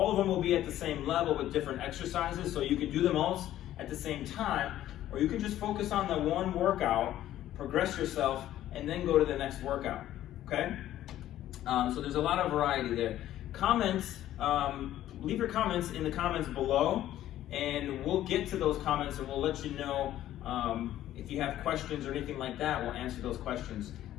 of them will be at the same level with different exercises, so you can do them all at the same time, or you can just focus on the one workout, progress yourself, and then go to the next workout, okay? So there's a lot of variety there. Comments, leave your comments in the comments below, and we'll get to those comments and we'll let you know if you have questions or anything like that. We'll answer those questions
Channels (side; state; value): right; quieter; 13.0 dB